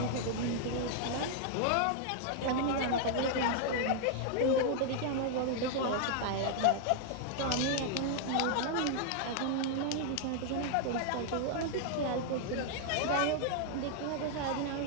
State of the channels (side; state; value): both; different; correlation 0.00